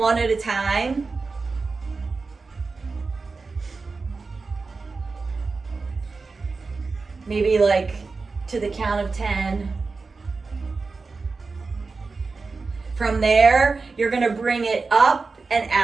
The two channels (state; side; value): quieter; left; 4.2 dB